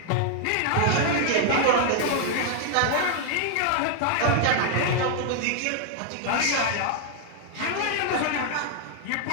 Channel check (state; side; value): different; both; correlation 0.00